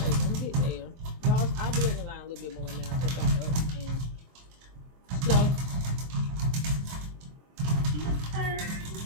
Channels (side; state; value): left; late; 24 ms